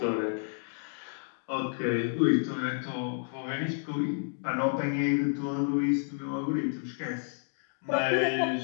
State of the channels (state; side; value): silent; right; digital silence